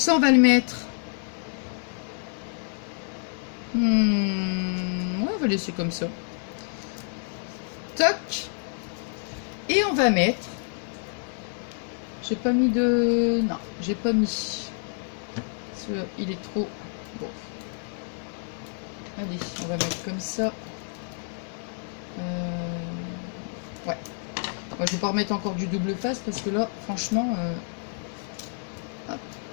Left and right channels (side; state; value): right; silent; 59 dB below the other